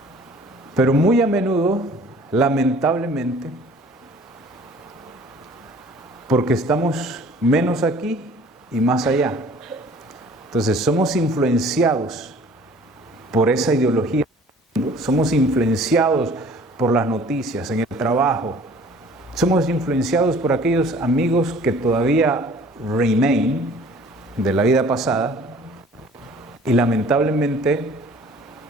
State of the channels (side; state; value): both; normal; correlation 0.51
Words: Pero muy a menudo, lamentablemente, porque estamos menos aquí y más allá. Entonces somos influenciados por esa ideología, somos influenciados por las noticias, en el trabajo, somos influenciados por aquellos amigos que todavía remain de la vida pasada, y lamentablemente